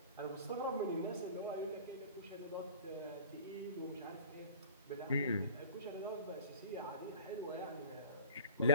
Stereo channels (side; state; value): both; inverted; correlation -0.38